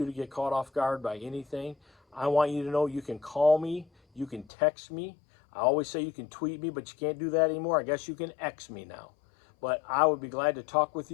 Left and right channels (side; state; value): right; drops out; at 4.5 s